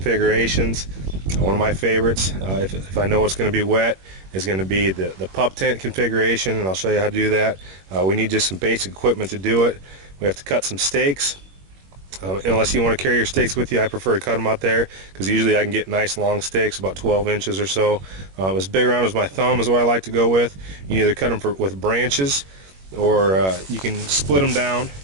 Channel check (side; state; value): left; late; 21 ms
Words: One of my favorites, if I know it's going to be wet, is going to be the pup tent configuration, and I'll show you how to do that. We need just some basic equipment to do it. We have to cut some stakes. Unless you want to carry your stakes with you, I prefer to cut them out there because usually I can get nice long stakes, about 12 inches or so. As big around as my thumb is what I like to go with. You can either cut them with branches, or you can split them down.